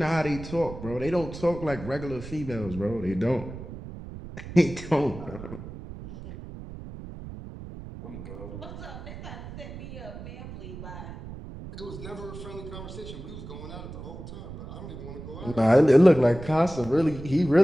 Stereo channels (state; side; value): noise; right; rumble, 12 dB below the sound